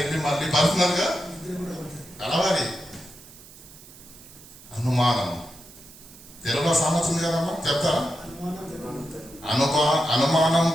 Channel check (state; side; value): noise; right; hiss, 20 dB below the sound